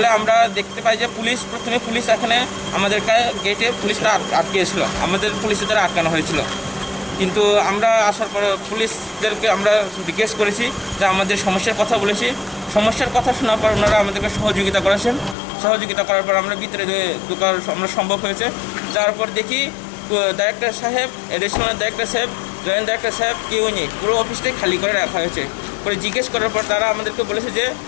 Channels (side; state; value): right; drops out; at 15.4 s